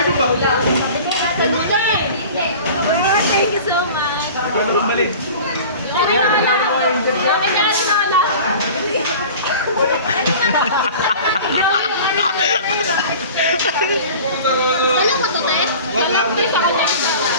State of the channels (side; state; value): both; inverted; correlation -0.40